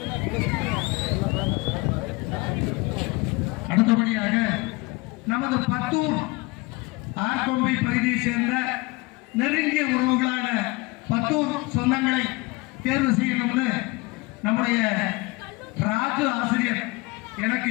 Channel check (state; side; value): quieter; right; 24.5 dB